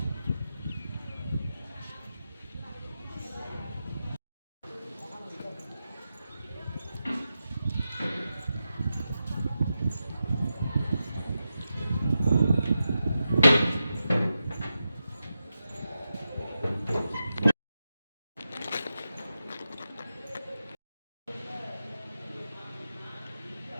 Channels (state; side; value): inverted; both; correlation -0.90